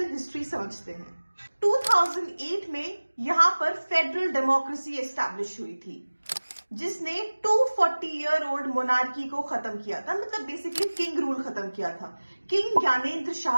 हिस्ट्री समझते हैं। 2008 में यहां पर फेडरल डेमोक्रेसी एस्टैब्लिश हुई थी, जिसने 240 ईयर ओल्ड मोनार्की को खत्म किया था। मतलब बेसिकली किंग रूल खत्म किया था। किंग ज्ञानेंद्र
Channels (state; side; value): inverted; both; correlation -1.00